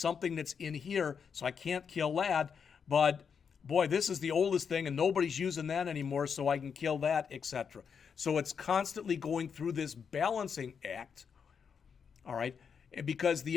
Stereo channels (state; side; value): quieter; right; 6.6 dB